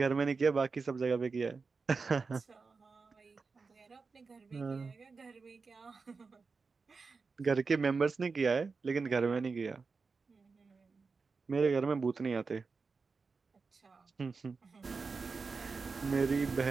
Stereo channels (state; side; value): quieter; left; 4.6 dB